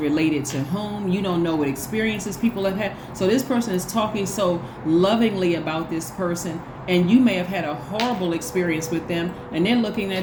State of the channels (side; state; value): both; identical; correlation 1.00